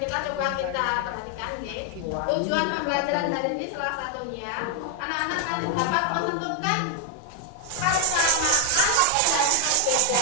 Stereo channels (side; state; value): both; different; correlation 0.00